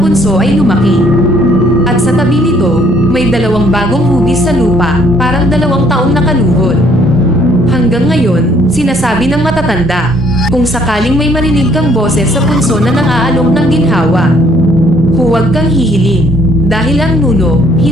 ay lumaki. At sa tabi nito, may dalawang bagong hugis sa lupa, parang 2 taong nakaluhod. Hanggang ngayon, sinasabi ng matatanda, kung sakaling may marinig kang boses sa punso na nang-aalok ng ginhawa, huwag kang hihiling, dahil ang nuno,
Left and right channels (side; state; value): both; normal; correlation 0.64